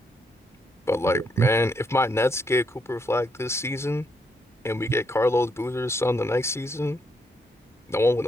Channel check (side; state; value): both; normal; correlation 0.76